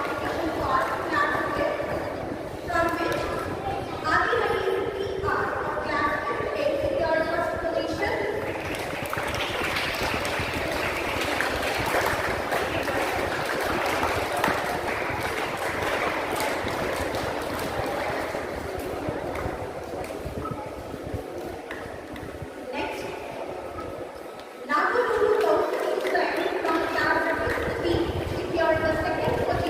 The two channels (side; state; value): both; identical; correlation 1.00